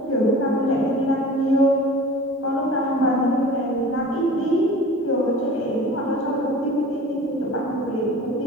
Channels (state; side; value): normal; both; correlation 0.41